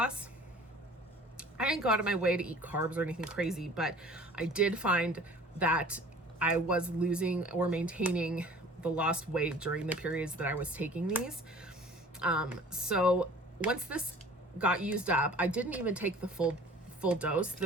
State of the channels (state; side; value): normal; both; correlation 0.47